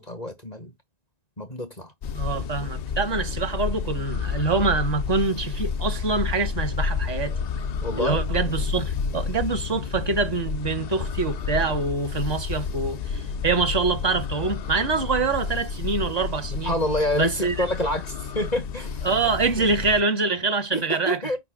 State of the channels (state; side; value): late; right; 1.9 ms